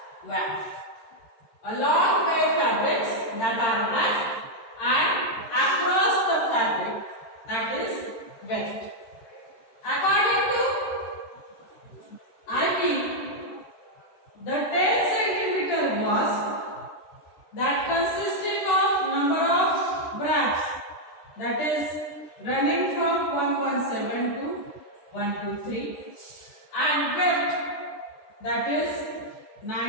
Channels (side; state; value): right; late; 13 ms